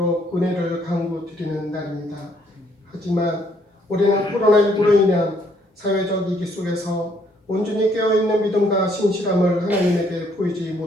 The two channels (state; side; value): normal; both; correlation 0.67